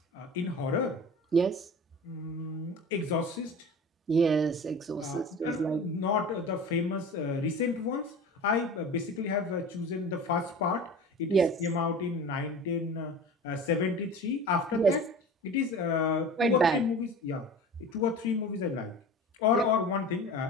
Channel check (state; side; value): normal; both; correlation 0.36